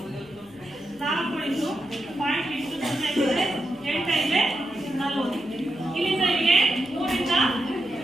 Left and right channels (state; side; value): noise; left; hum, 28 dB below the sound